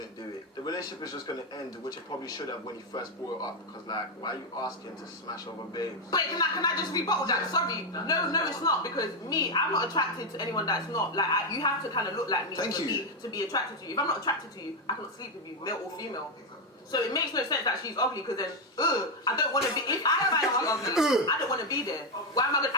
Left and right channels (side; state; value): both; normal; correlation 0.05